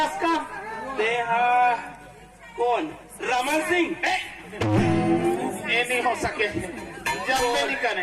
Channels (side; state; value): both; identical; correlation 1.00